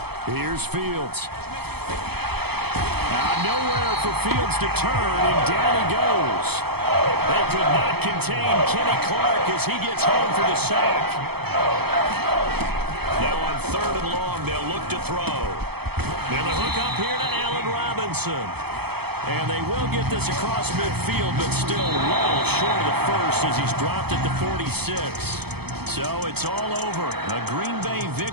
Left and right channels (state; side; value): late; left; 0.97 ms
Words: Here's Fields. Now nowhere for Fields to turn, and down he goes. They could not contain Kenny Clark as he gets home for the sack. Now on 3rd and long, they'll look to throw. Then the hook up here to Allen Robinson. And they will get this across midfield, but still well short of the first as he's dropped at the 46. So it's all over. A Green Bay